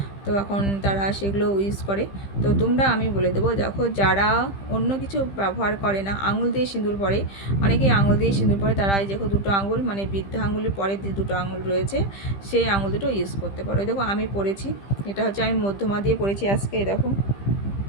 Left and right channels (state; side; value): late; right; 15 ms